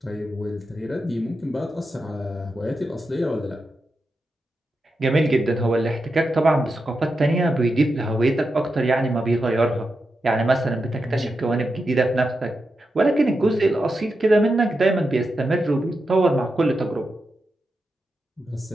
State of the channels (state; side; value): normal; both; correlation 0.88